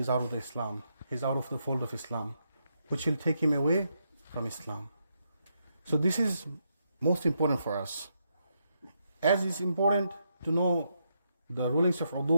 out of the Islam. He's out of the fold of Islam, which will take him away from Islam. So this is most important for us. As it's important to know the rulings of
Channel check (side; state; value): both; inverted; correlation -0.80